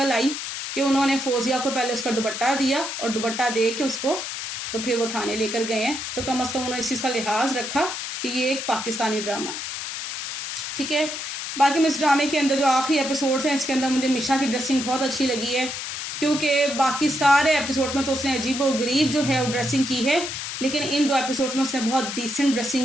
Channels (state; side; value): noise; left; hiss, 6 dB below the sound